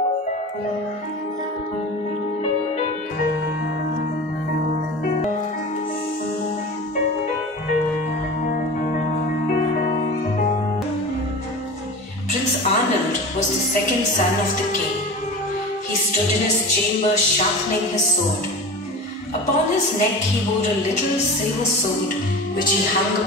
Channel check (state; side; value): normal; both; correlation 0.33